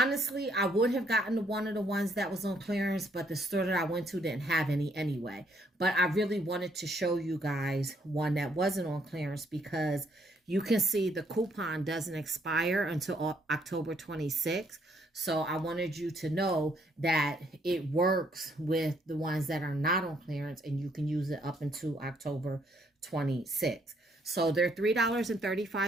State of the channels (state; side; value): normal; both; correlation 0.69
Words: I would have gotten one of the ones that was on clearance, but the store that I went to didn't have any anyway. But I really wanted to show you guys one that wasn't on clearance because you can see the coupon doesn't expire until October 26th. So I wanted you to know that it works with the ones that are not on clearance, and you can use it up until October 26th. So they're